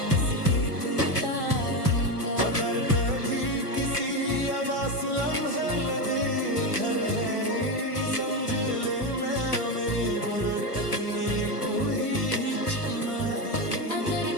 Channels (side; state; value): right; late; 1.3 ms